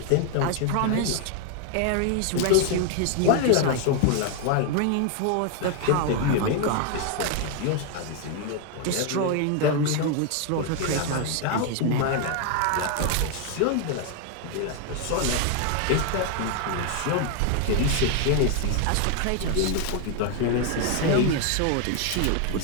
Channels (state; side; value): different; both; correlation 0.00